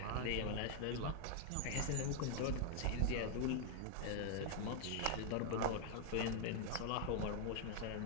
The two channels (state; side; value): different; both; correlation 0.00